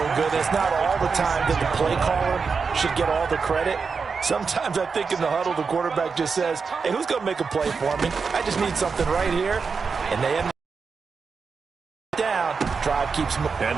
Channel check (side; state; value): left; quieter; 5.2 dB